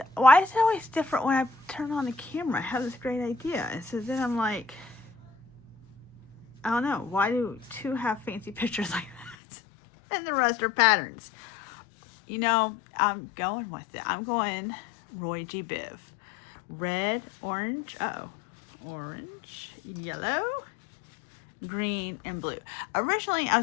Why is it always different when I turn on the camera? I have this great idea. And so then I'm like, I don't know. Why do two have fancy pictures like that? And the rest are patterns. You know, I'm going with it. I'm going Roy G. Biv. Red, orange, orange, yellow, green, and blue. Originally, I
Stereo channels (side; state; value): right; drops out; at 9.3 s